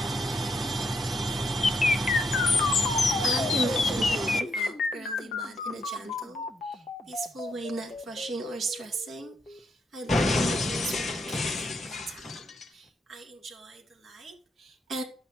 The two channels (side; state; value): both; normal; correlation 0.76